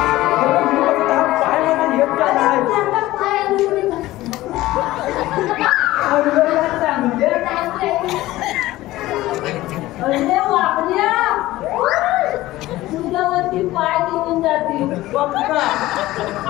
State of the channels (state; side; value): quieter; right; 16.9 dB